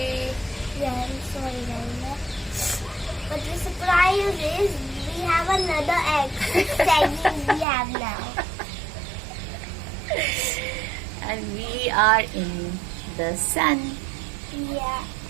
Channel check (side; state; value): left; drops out; at 7.7 s